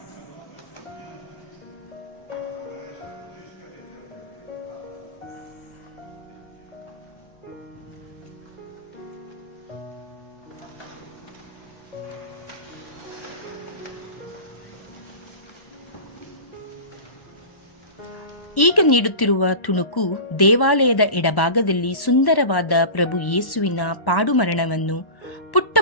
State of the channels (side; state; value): right; late; 1.1 ms